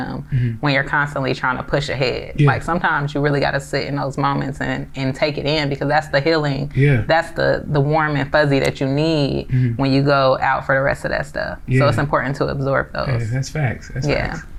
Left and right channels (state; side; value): identical; both; correlation 1.00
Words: when you're constantly trying to push ahead. Like sometimes you really got to sit in those moments and take it in, because that's the healing. That's the warm and fuzzy that you need when you go out for the rest of that stuff. So it's important to absorb those. Yeah, that's facts. That's facts.